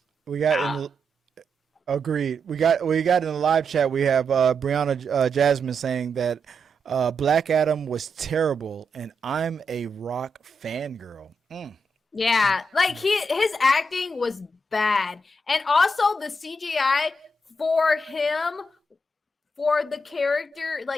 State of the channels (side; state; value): both; normal; correlation 0.82